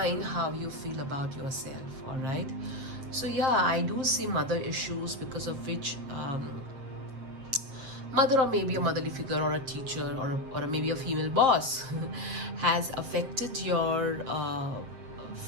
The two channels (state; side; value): late; left; 7.7 ms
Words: how you feel about yourself. All right. So yeah, I do see mother issues, because of which mother, or maybe a motherly figure, or a teacher, or maybe a female boss has affected your